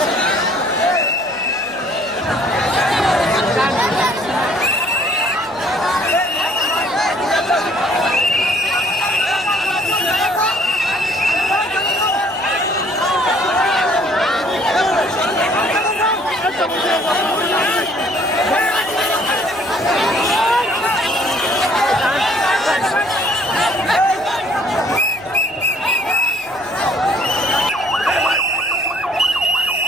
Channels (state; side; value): noise; left; hum, 27 dB below the sound